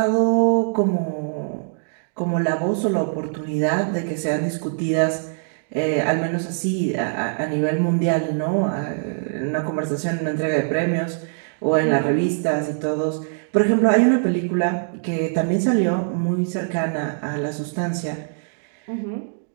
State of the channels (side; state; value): left; silent; digital silence